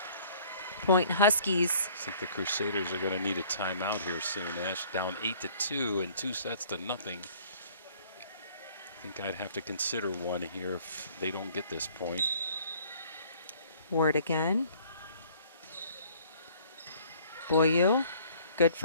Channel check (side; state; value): both; inverted; correlation -0.55